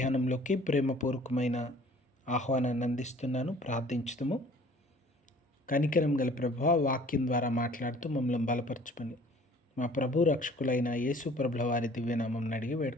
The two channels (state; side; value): normal; both; correlation 0.52